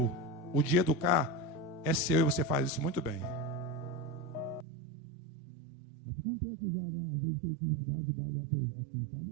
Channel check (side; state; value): left; drops out; at 4.7 s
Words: O de educar é seu e você faz isso muito bem. Eu te contei aqui já, né? Às vezes que ele quis dar de bravo. Aqui em